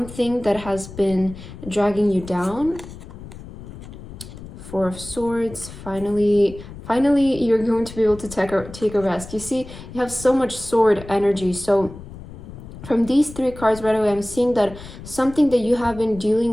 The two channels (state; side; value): noise; left; rumble, 14 dB below the sound